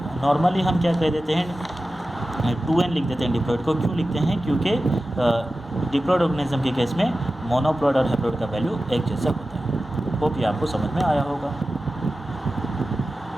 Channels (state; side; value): normal; both; correlation 0.94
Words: नॉर्मली हम क्या कह देते हैं, 2n लिख देते हैं डिप्लॉइड को। क्यों लिखते हैं, क्योंकि डिप्लॉइड ऑर्गेनिज्म के केस में मोनोप्लॉइड और हैप्लॉइड का वैल्यू एक जैसा होता है। होप ये आपको समझ में आया होगा।